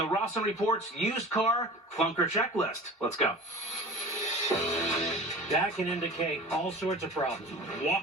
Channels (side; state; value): both; normal; correlation 0.39